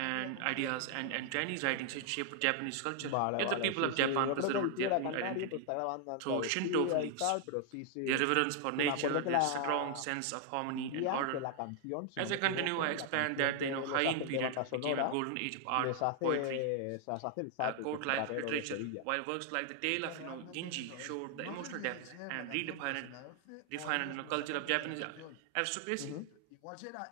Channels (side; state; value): both; different; correlation 0.00